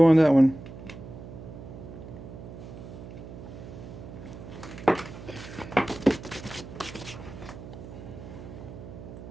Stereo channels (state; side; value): noise; right; hum, 13 dB below the sound